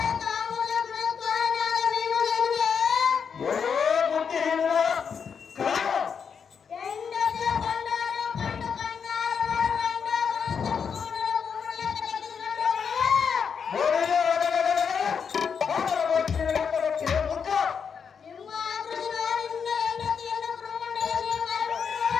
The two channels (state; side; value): quieter; right; 6.6 dB